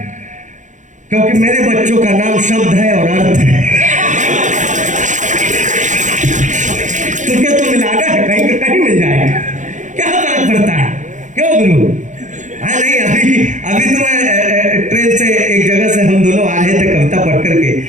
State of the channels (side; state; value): left; late; 0.36 ms